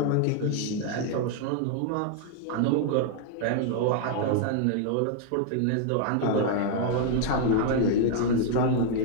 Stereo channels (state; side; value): different; both; correlation 0.00